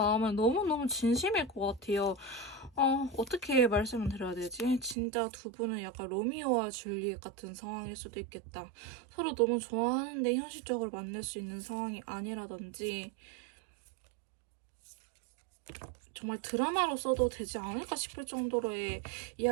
너무너무 진심일 것 같아요. 어떻게 말씀을 드려야 되지? 진짜 두 분은 약간 로미오와 줄리엣 같은 상황일 수도 있겠다. 서로 너무 좋아하는데 현실적으로 만날 수 있는 상황이 아니라든지 정말 드라마로 써도 되지 않을까 싶을 정도로의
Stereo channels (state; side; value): drops out; left; at 5.0 s